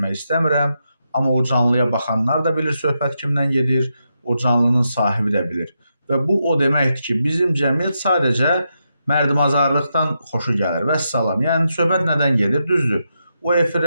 istəmirəm, amma o canlıya baxanlar da bilir söhbət kimdən gedir, o canlının sahibi də bilir. Və bu o deməkdir ki, bizim cəmiyyət sadəcə mərdimazarlıqdan xoşu gəlir. Vəssalam. Yəni söhbət nədən gedir? Düzdür. O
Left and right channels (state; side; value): inverted; both; correlation -0.85